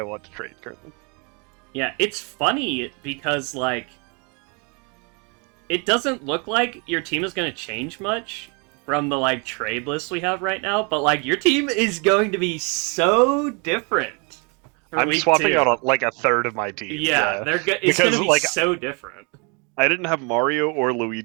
want to trade currently. Yeah, it's funny because like it doesn't look like your team is going to change much from the like trade list we have right now, but like your team is going to be so different. I'm swapping out like a third of my team. Yeah, it's going to be like, so different. I didn't have Mario or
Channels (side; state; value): left; quieter; 33.6 dB